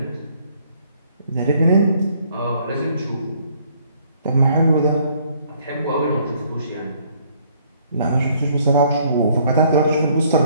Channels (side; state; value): both; inverted; correlation -0.63